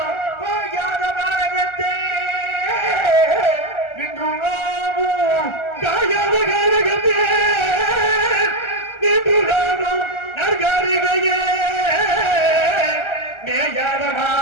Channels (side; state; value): right; late; 1.4 ms